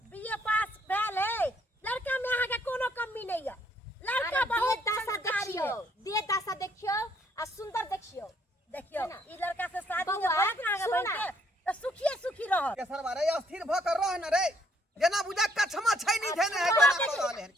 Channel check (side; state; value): both; normal; correlation 0.67